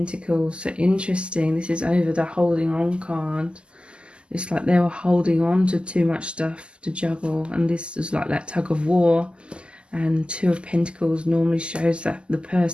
So interesting. This is over the holding on card. It's like they were holding on to too much stuff to juggle. And this is like that tug of war. And 2 of Pentacles normally shows that the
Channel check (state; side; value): late; left; 0.051 ms